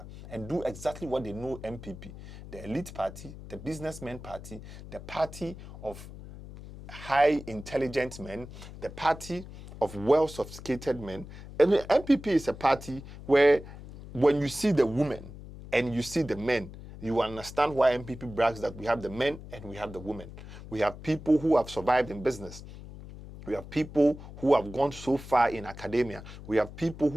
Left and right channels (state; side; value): noise; left; hum, 14 dB below the sound